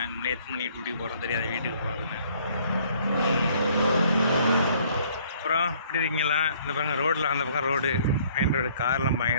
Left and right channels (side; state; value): both; inverted; correlation -0.61